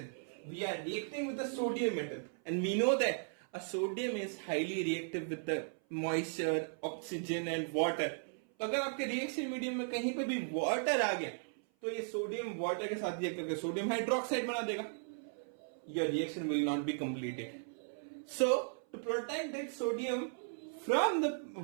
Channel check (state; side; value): silent; left; 53 dB below the other